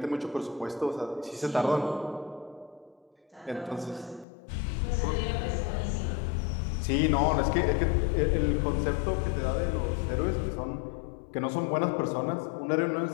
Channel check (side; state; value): right; drops out; at 4.2 s